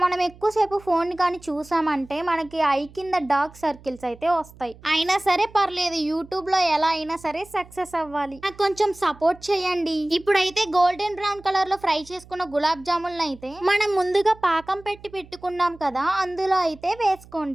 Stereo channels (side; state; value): right; noise; hum, 22 dB below the sound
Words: మనం ఎక్కువసేపు ఫోన్ కానీ చూసామంటే మనకి ఐ కింద డార్క్ సర్కిల్స్ అయితే వస్తాయి. అయినా సరే పర్లేదు, యూట్యూబ్ లో ఎలా అయినా సరే సక్సెస్ అవ్వాలి. నాకు కొంచెం సపోర్ట్ చేయండి. ఇప్పుడైతే గోల్డెన్ బ్రౌన్ కలర్ లో ఫ్రై చేసుకున్న గులాబ్ జాములను అయితే మనం ముందుగా పాకం పెట్టుకున్నాం కదా, అందులో అయితే